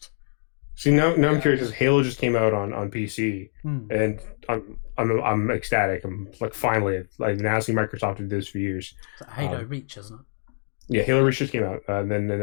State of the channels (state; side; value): silent; right; 62 dB below the other